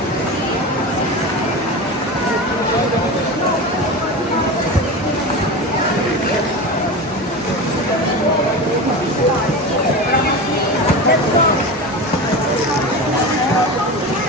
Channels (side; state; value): both; normal; correlation 0.26